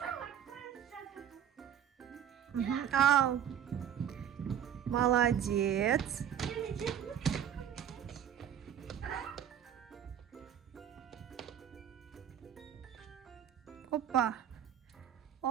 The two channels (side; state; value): left; quieter; 9.5 dB